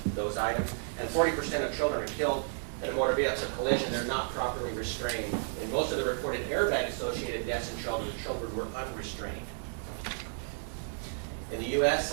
those items, and 40% of children are killed in a motor vehicle collision. They're not properly restrained. In most of the reported airbag-associated deaths in children, the children were unrestrained. In the U.S.,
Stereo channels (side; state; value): left; silent; digital silence